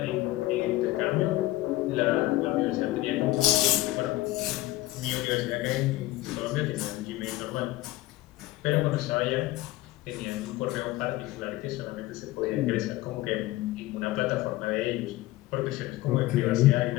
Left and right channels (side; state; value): right; quieter; 17.5 dB